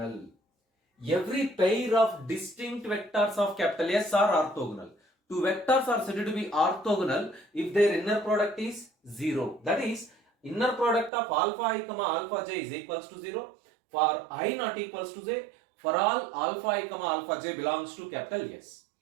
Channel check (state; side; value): drops out; left; at 11.1 s